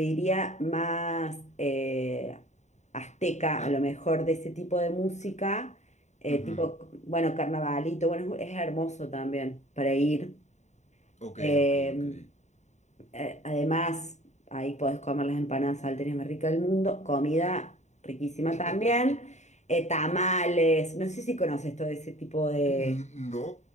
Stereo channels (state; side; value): late; right; 0.34 ms